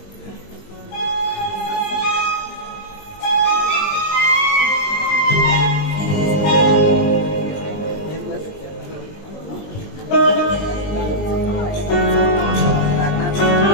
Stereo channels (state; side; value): late; right; 20 ms